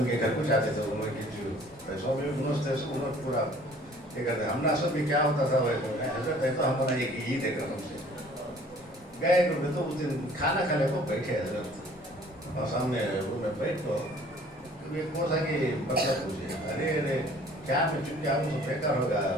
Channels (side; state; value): both; normal; correlation 0.53